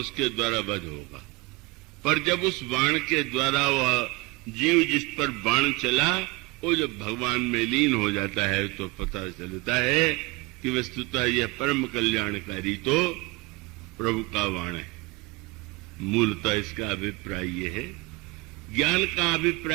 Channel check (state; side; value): quieter; left; 23.8 dB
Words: द्वारा वध होगा, पर जब उस बाण के द्वारा वह जीव जिस पर बाण चला वो जब भगवान में लीन हो जाता है तो पता चलता है कि वस्तुतः यह परम कल्याणकारी तो प्रभु का बाण है। मूलतः इसका अभिप्राय यह है, ज्ञान का